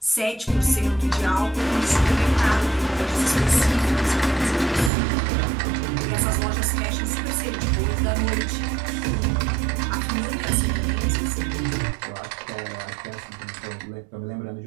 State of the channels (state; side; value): drops out; left; at 4.9 s